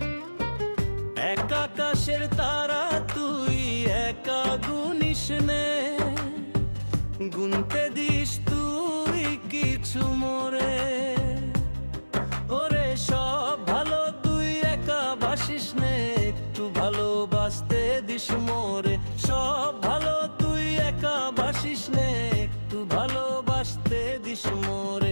এক আকাশের তারা তুই একা গুনিস নে, গুনতে দিস তুই কিছু মোরে। ওরে সব ভালো তুই একা বাসিস নে, একটু ভালোবাসতে দিস মোরে। সব ভালো তুই একা বাসিস নে, একটু ভালোবাসতে দিস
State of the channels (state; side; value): inverted; both; correlation -1.00